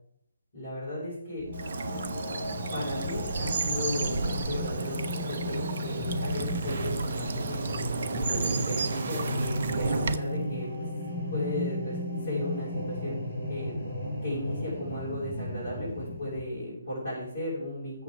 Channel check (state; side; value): inverted; both; correlation -0.69